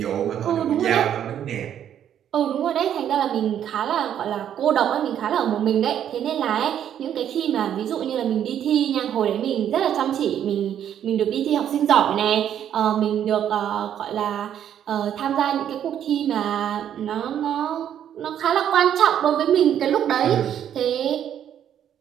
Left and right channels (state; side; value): quieter; left; 9.9 dB